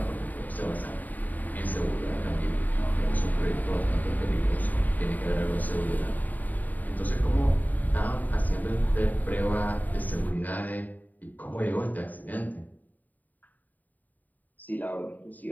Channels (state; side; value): late; right; 0.082 ms